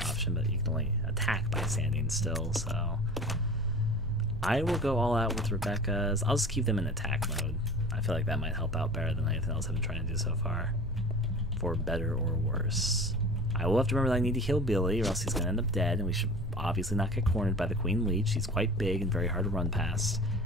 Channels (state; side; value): normal; both; correlation 0.38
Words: option, but you can only attack by standing still, so I will go all out with Rebecca's. I'll just keep them in attack mode. I feel like that might help out better than anything else I've been trying to do so far, for better or worse. I will have to remember that I need to heal Billy, or else he's going to end up dead, and we should obviously not get cornered by the Queen Leech. She's quite big and very hard to run past,